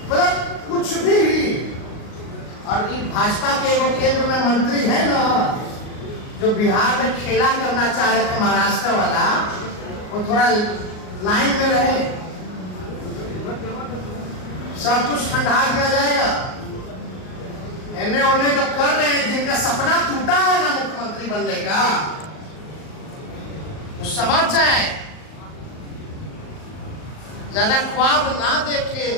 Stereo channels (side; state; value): right; late; 38 ms